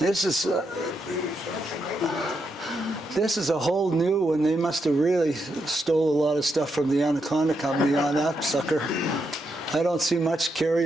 is a whole new one. They must have really stole a lot of stuff from the Anaconda Company on that sucker. I don't see much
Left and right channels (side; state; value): both; normal; correlation 0.81